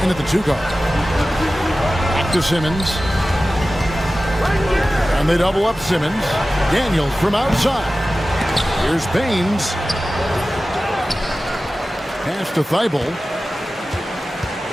in at the 2 guard. Back to Simmons. And they double up Simmons. Daniels from outside. Here's Baines. Pass to Thybulle.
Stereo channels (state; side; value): normal; both; correlation 0.95